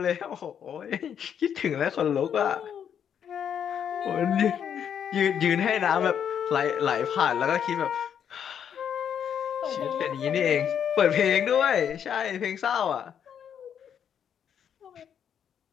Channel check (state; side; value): quieter; right; 8.5 dB